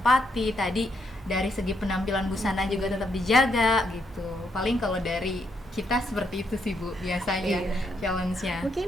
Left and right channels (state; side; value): normal; both; correlation 0.77